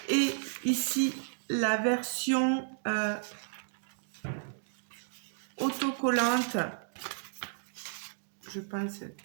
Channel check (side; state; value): left; silent; digital silence